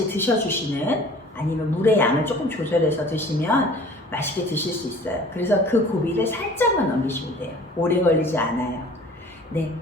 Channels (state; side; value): normal; both; correlation 0.48